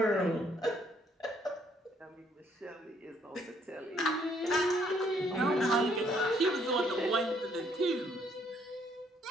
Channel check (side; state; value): both; normal; correlation 0.67